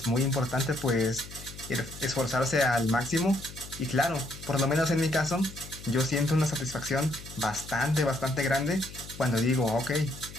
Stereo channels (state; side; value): noise; left; hum, 15 dB below the sound